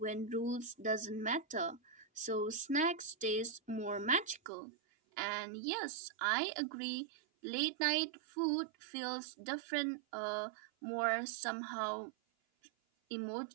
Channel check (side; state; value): left; drops out; at 4.5 s